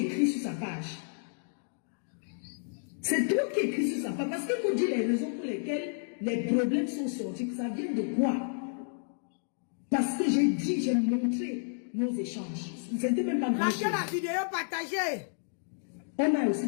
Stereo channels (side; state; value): right; silent; digital silence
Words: sur sa page. C'est toi qui écris sur sa page. Parce qu'il faut dire les raisons pour lesquelles les problèmes sont sortis. Ça vient de quoi? Parce que j'ai montré nos échanges. C'était même pas grand chose. La vidéo partagée. On a aussi